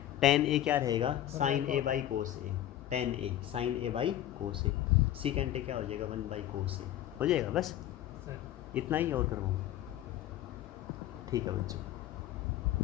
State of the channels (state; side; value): quieter; right; 12.6 dB